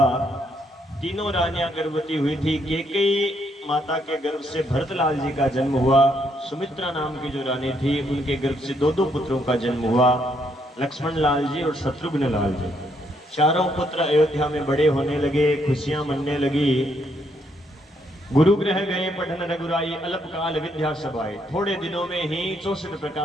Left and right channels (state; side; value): normal; both; correlation 0.73